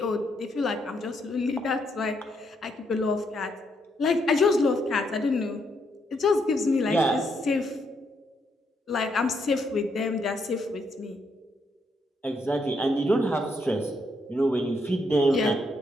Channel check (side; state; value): both; normal; correlation 0.76